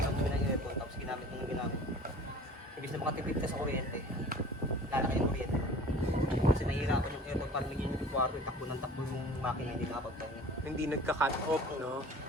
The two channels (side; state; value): both; normal; correlation 0.44